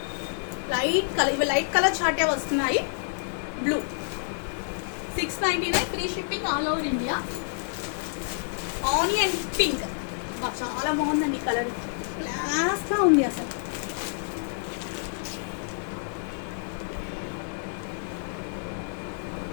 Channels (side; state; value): right; silent; 59 dB below the other